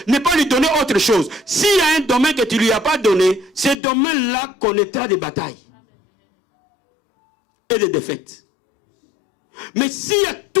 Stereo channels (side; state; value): right; drops out; at 3.8 s